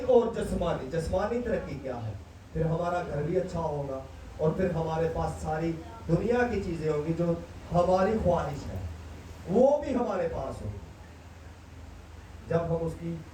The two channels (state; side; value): identical; both; correlation 1.00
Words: और जिस्मानी तरक्की क्या है? फिर हमारा घर भी अच्छा होगा और फिर हमारे पास सारी दुनिया की चीजें होंगी जो हमारी ख्वाहिश है, वो भी हमारे पास होगी। जब हम उसकी